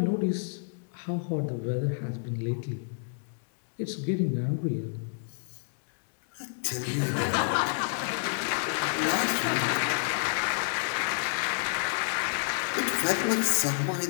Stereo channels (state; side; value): silent; right; 58 dB below the other